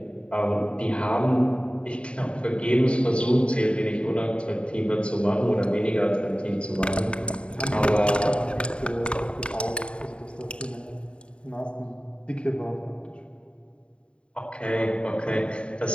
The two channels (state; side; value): late; right; 0.056 ms